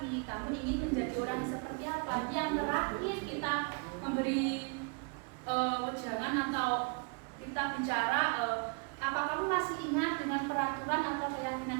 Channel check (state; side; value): quieter; left; 34.9 dB